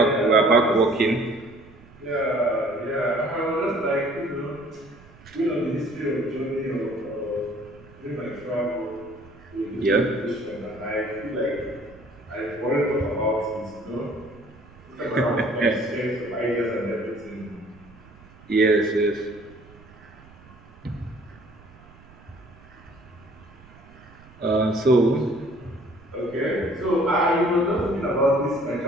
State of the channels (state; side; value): noise; right; rumble, 23 dB below the sound